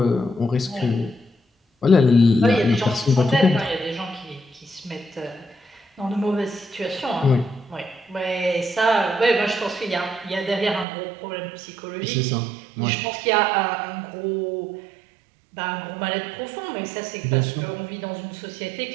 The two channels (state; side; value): drops out; left; at 10.9 s